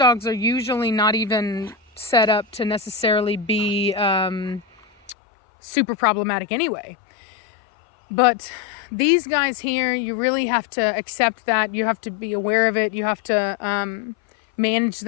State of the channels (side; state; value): right; drops out; at 5.2 s